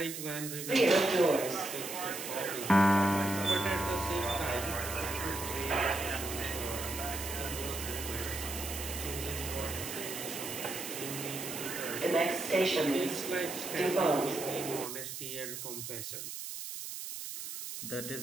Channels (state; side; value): noise; right; hiss, 7 dB below the sound